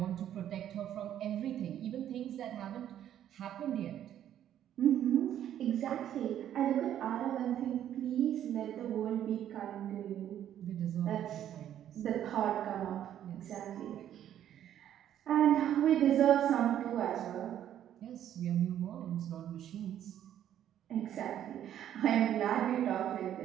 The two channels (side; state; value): left; quieter; 10.8 dB